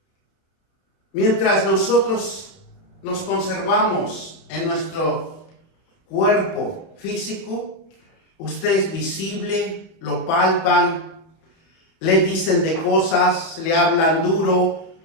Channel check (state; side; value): late; right; 31 ms